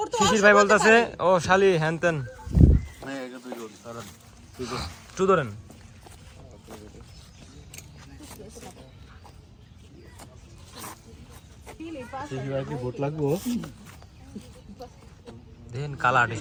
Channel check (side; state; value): both; identical; correlation 1.00